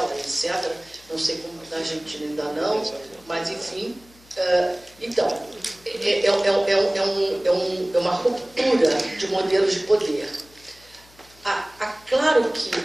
etc., não sei como na Argentina ainda não, mas enfim. Então, é uma ruptura de modelos de poder. Claro que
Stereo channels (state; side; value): noise; left; hum, 27 dB below the sound